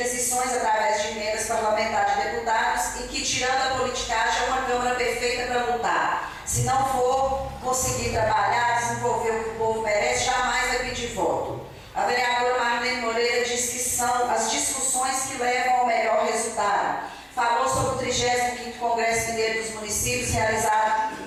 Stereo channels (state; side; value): identical; both; correlation 1.00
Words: através de emendas parlamentares de deputados e que, tirando a politicagem, é uma Câmara perfeita para lutar. Se não for conseguir trabalhar, desenvolver o que o povo merece, jamais vai pedir voto. A vereadora Marlene Moreira diz que são as discussões que levam ao melhor resultado. Falou sobre o 35º Congresso Mineiro dos Municípios, realizado